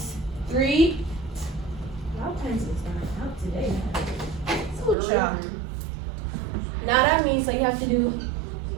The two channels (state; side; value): drops out; left; at 5.0 s